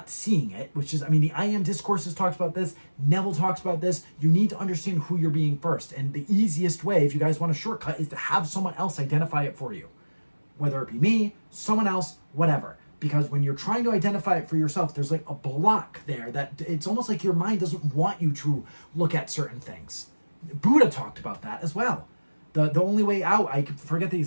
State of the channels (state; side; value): inverted; both; correlation -1.00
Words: seeing it, which is, I mean, the I Am Discourses talks about this, Neville talks about this. You need to understand who you're being first. And the easiest way, if you guys want a shortcut, is to have someone else identify it for you. Whether it be me, someone else, whatever. Because when you're trying to identify it for yourself, there's like a block there that it's almost like your mind doesn't want you to look at certain things. Buddha talked about that as well. The only way out, I forget the